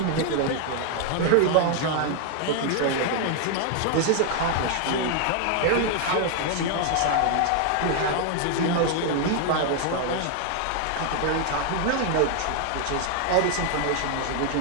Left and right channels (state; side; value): different; both; correlation 0.00